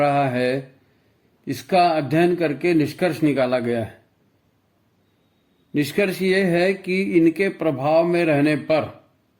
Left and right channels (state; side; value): identical; both; correlation 1.00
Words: है, इसका अध्ययन करके निष्कर्ष निकाला गया है। निष्कर्ष ये है कि इनके प्रभाव में रहने पर